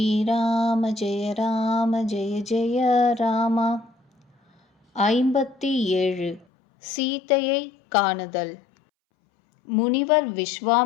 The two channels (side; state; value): right; drops out; at 6.5 s